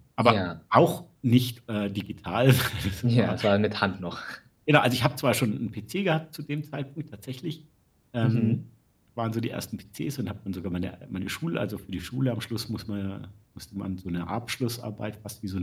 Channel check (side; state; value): both; identical; correlation 1.00